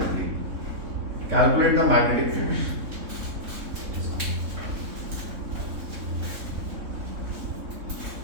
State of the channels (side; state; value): left; late; 3.6 ms